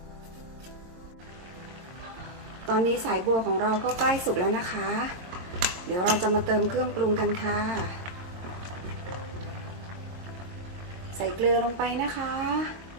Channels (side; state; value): left; late; 22 ms